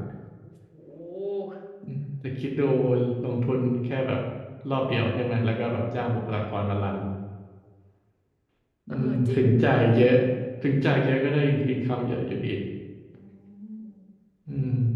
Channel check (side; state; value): both; identical; correlation 1.00